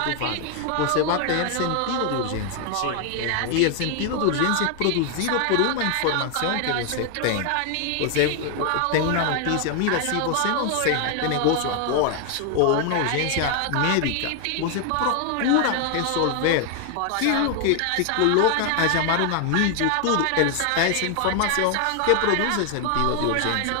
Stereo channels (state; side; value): different; both; correlation 0.00